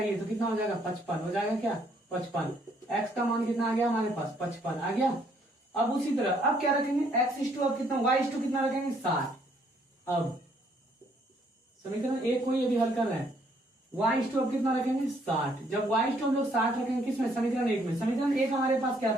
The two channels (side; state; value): both; normal; correlation 0.67